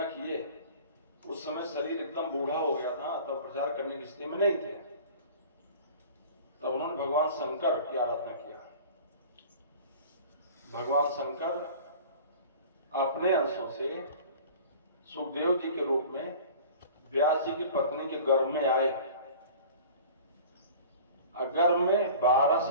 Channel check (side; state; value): both; inverted; correlation -0.42